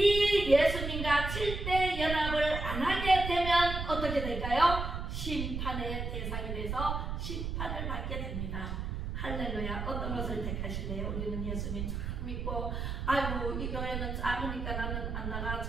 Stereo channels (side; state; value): right; noise; rumble, 4 dB below the sound